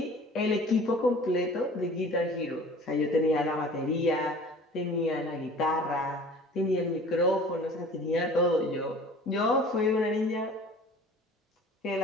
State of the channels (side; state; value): both; normal; correlation 0.46